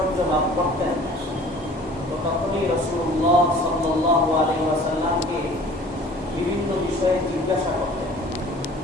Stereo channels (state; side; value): normal; both; correlation 0.48